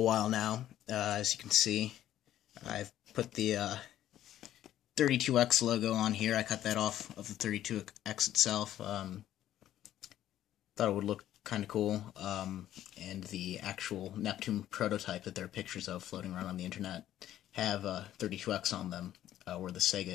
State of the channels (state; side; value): quieter; right; 12.3 dB